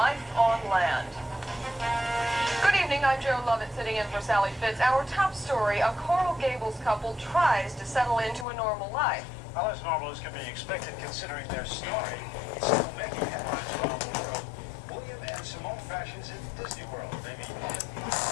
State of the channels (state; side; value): drops out; right; at 8.5 s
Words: on land. Good evening, I'm Joe Lovett sitting in for Sally Fitz. Our top story, a Coral Gables couple tries to settle into a normal life. Well, as normal as can be expected considering their story. It's still making headlines around the world. William and Simone fashions in Disney World, baby.